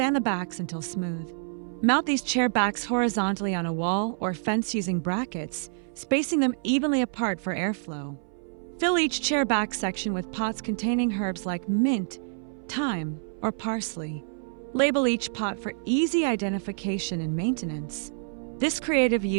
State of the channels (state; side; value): silent; left; 60 dB below the other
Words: the backs until smooth. Mount these chair backs horizontally on a wall or fence using brackets, spacing them evenly apart for airflow. Fill each chair back section with pots containing herbs like mint, thyme, or parsley. Label each pot for easy identification and maintenance. This creative